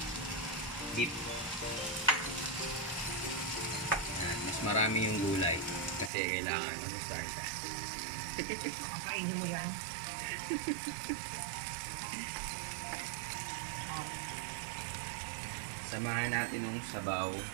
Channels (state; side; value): drops out; left; at 6.1 s